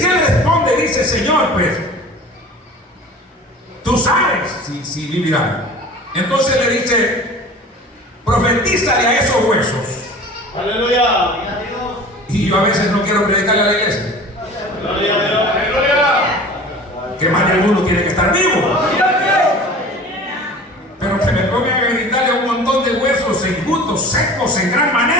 responde, dice: Señor, pues tú sabes si vivirán. Entonces le dice: profetízale a esos huesos. Aleluya. Y yo a veces no quiero predicarle a la iglesia, que más de algunos tienen que estar vivos, pero que me pongan a gritarle a un montón de huesos enjutos, secos en gran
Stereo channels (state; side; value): normal; both; correlation 0.41